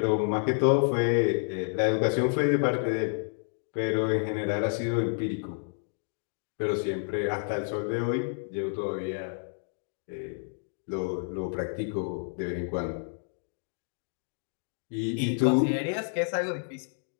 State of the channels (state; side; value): silent; right; digital silence